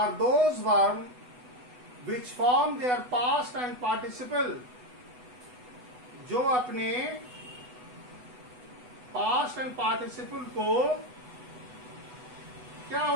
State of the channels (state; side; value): late; left; 8.0 ms